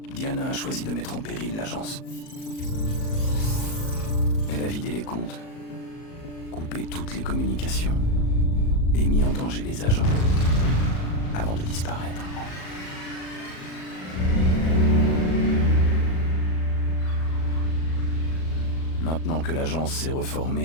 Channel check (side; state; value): right; late; 37 ms